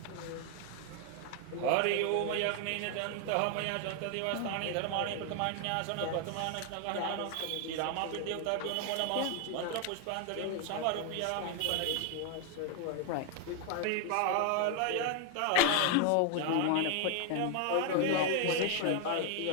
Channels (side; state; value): both; different; correlation 0.01